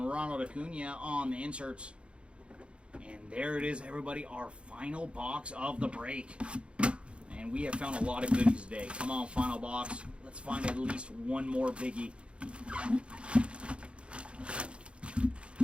Ronald Acuna on the inserts. And there it is, everybody, our final box of the break. And we have found a lot of goodies today. Come on, final box. Let's find at least one more biggie.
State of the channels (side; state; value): left; late; 0.058 ms